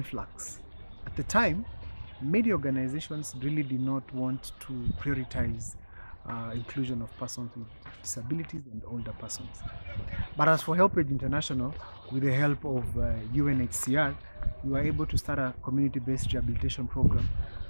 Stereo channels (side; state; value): both; inverted; correlation -1.00